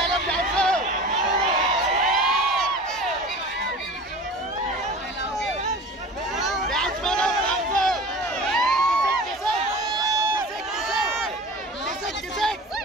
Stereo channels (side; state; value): both; normal; correlation 0.38